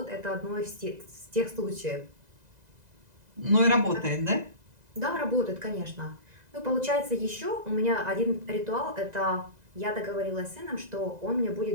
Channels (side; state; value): left; late; 2.0 ms